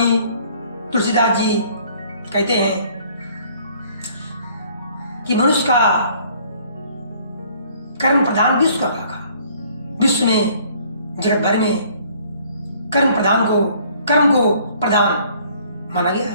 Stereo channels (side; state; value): both; inverted; correlation -0.58